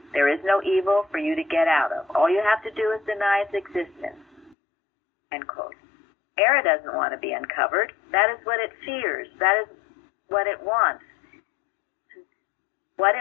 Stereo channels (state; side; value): drops out; right; at 4.5 s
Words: there is no evil for you to get out of. All you have to do is deny its existence, end quote. Error doesn't want to be uncovered. That is what it fears. That is what it wants. What